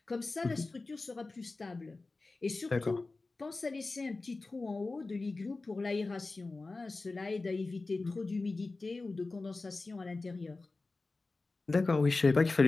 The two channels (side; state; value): right; quieter; 3.5 dB